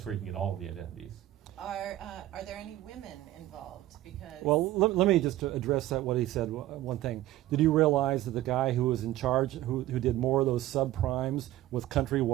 where you can get all of the identities. Are there any women involved? Because let me just address what he said. One thing: did you realize that the guy who was in charge, who did more of those subprimes with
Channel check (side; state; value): left; quieter; 14.9 dB